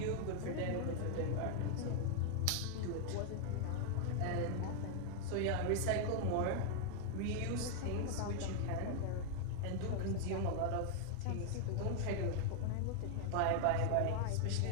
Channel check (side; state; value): both; different; correlation 0.00